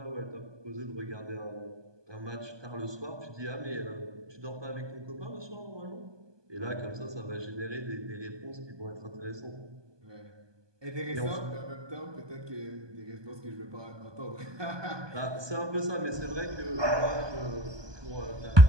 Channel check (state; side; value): late; left; 1.2 ms